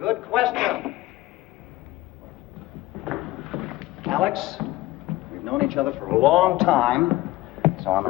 question. Alex, we've known each other for a long time, so I'm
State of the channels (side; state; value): right; quieter; 17.7 dB